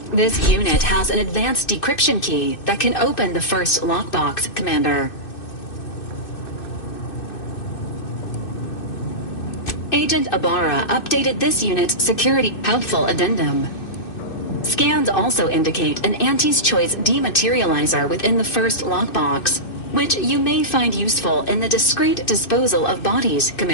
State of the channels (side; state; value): right; late; 2.6 ms